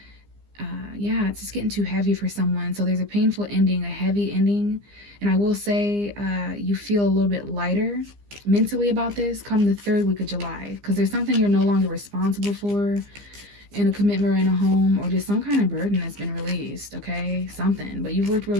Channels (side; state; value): left; late; 15 ms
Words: yeah, it's just getting too heavy for someone. So there's a painful ending, a heavy ending. And I will say you feel a little bit lighter mentally about this come the 3rd week of July, because there's something you're no longer responsible for in a commitment or in a home, or just some kind of burden that's been released, okay? Something. But you've worked